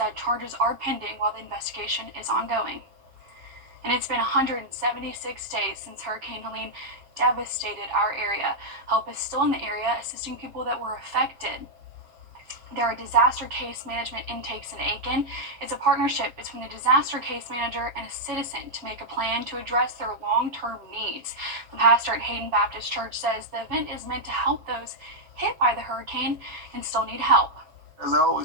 charges are pending while the investigation is ongoing. And it's been 176 days since Hurricane Helene devastated our area. Help is still in the area, assisting people that were affected. There are disaster case management intakes in Aiken. It's a partnership between the disaster case manager and a citizen to make a plan to address their long-term needs. The pastor at Hayden Baptist Church says the event is meant to help those hit by the hurricane and still need help. As I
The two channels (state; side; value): late; left; 7.3 ms